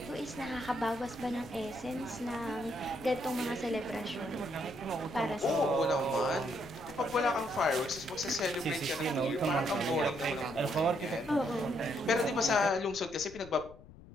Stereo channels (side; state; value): left; noise; rumble, 19 dB below the sound